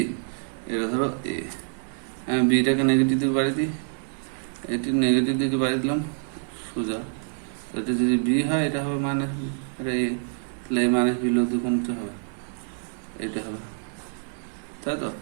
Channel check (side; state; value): left; silent; 61 dB below the other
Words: এটা ধরো এ, বিটাকে নেগেটিভ দিকে বাড়িয়ে দিই, এটি নেগেটিভ দিকে বাড়িয়ে দিলাম সোজা, এটা যদি বি হয় এটা হবে মাইনাস বি, এটা এ, তাহলে এ মাইনাস বি লব্ধি কোনটা হবে? এটা হবে, তাই তো?